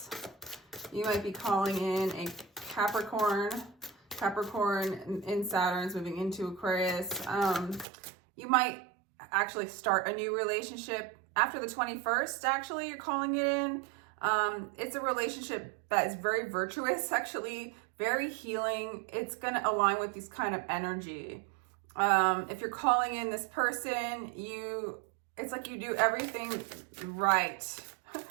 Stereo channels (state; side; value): drops out; left; at 7.9 s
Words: You might be calling in a Capricorn. Capricorn in Saturn's moving into Aquarius. You might actually start a new relationship after the 21st. Actually, you're calling it in. It's a relationship that is very virtuous, actually, very healing. It's going to align with this kind of energy. If you're calling in this person, it's like you do everything right.